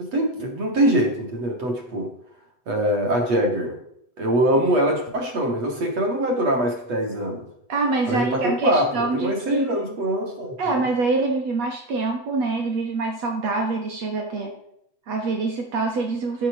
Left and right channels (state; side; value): late; left; 8.2 ms